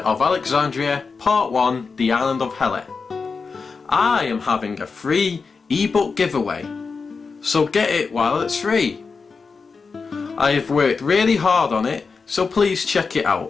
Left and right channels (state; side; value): quieter; right; 4.8 dB